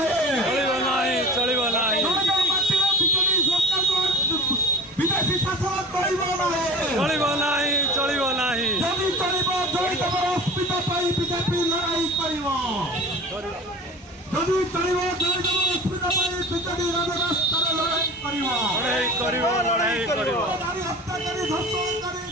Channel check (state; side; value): normal; both; correlation 0.37